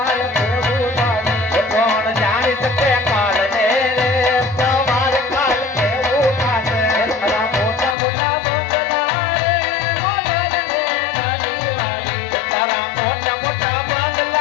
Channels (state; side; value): drops out; right; at 8.0 s